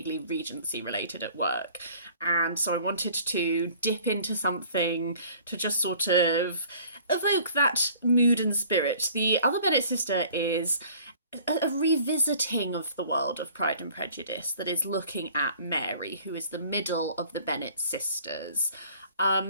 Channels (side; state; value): both; inverted; correlation -0.51